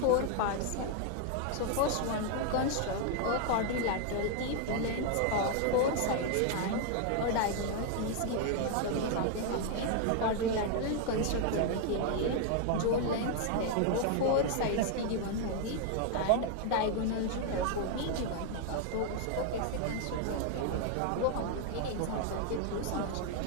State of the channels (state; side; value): different; both; correlation 0.00